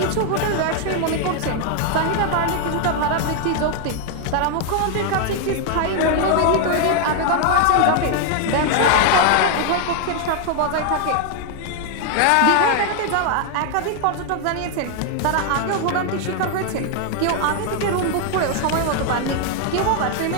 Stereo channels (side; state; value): both; different; correlation 0.00